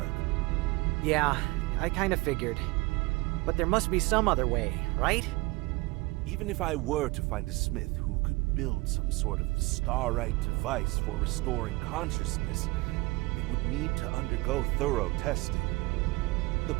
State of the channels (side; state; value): left; quieter; 23.4 dB